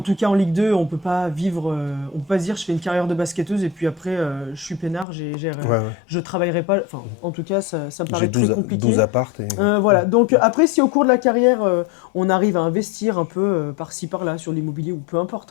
tout cas en Ligue 2, on peut pas vivre, on peut pas se dire je fais une carrière de basketteuse et puis après je suis peinard, Ouais, ouais. je travaillerai pas. Enfin, en tout cas, ça me J'ai paraît très 12 compliqué. apparts et Voilà. Donc après, si au cours de la carrière, on arrive à investir un peu par-ci par-là sur l'immobilier ou peu importe,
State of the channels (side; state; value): right; drops out; at 5.1 s